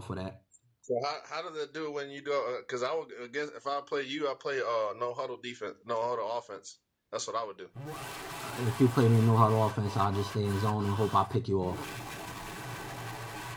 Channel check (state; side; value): identical; both; correlation 1.00